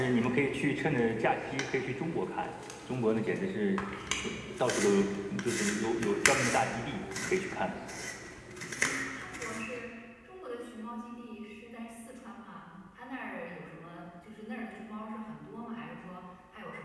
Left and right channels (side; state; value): both; identical; correlation 1.00